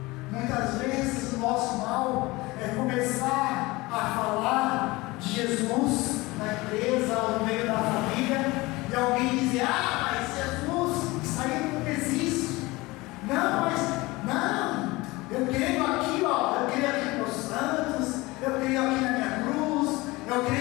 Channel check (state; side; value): quieter; right; 21.7 dB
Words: Muitas vezes o nosso mal é começar a falar de Jesus na empresa ou no meio da família, e alguém dizer: ah, mas Jesus, isso aí não existe. Não, mas não, eu creio aqui, ó, eu creio aqui nos santos, eu creio aqui na minha cruz, eu